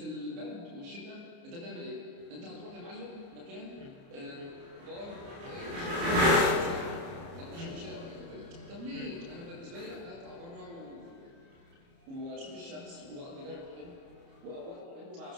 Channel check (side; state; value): left; late; 29 ms